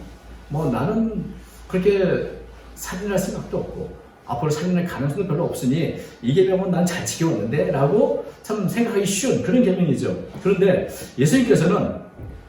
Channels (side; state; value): both; identical; correlation 1.00